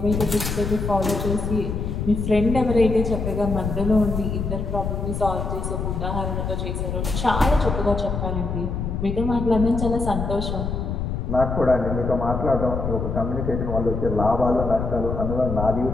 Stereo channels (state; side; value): noise; left; rumble, 3 dB below the sound